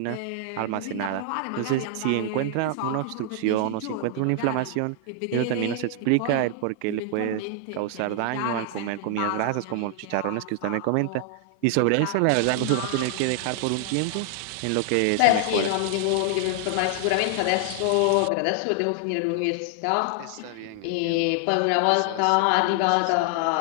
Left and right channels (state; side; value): different; both; correlation 0.00